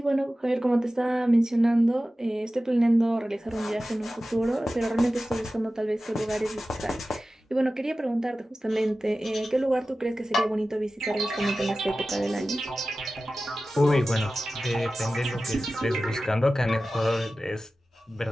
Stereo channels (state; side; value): normal; both; correlation 0.95